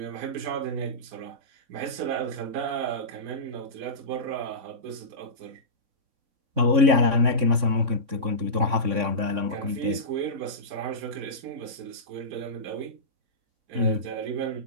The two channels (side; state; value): left; late; 3.6 ms